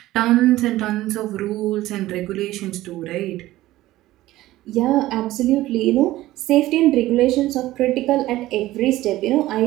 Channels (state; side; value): quieter; left; 16.3 dB